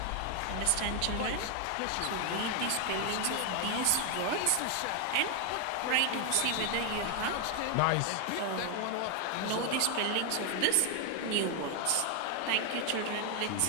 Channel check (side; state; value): both; different; correlation 0.01